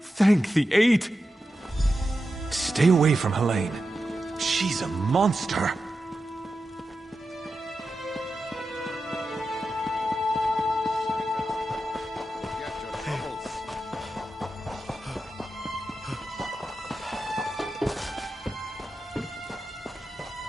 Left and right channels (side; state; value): both; normal; correlation 0.90